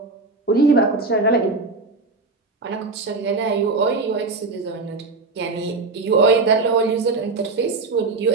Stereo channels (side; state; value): left; quieter; 3.8 dB